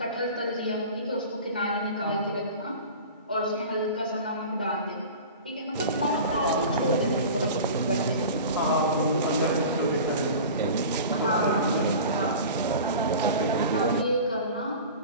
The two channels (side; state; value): both; inverted; correlation -0.36